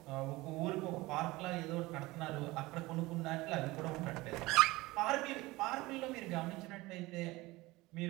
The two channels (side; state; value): left; quieter; 20.5 dB